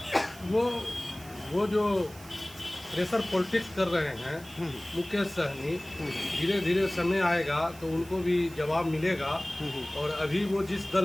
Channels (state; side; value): noise; right; hiss, 20 dB below the sound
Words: वो जो प्रेशर पॉलिटिक्स कर रहे हैं मुकेश सहनी, धीरे धीरे समय आएगा तो उनको भी जवाब मिलेगा। और अभी वो जिस